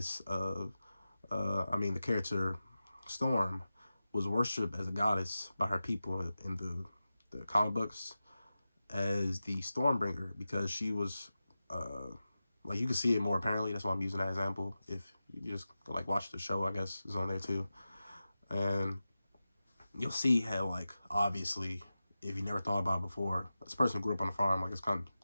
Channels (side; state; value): both; inverted; correlation -0.94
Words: of, the character Storm was worshipped as a goddess by her people in the comic books. as the Stormbringer because she was, like, you can see it more apparently. That's why I'm using that example. If you just like watch the show, I guess is on there too, and you'll see how, like, obviously, if you never thought about it before, this person grew up on a farm, like, it's kind